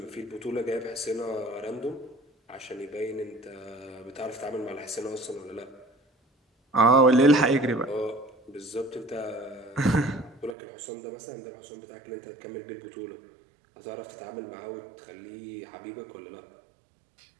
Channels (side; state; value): left; drops out; at 10.6 s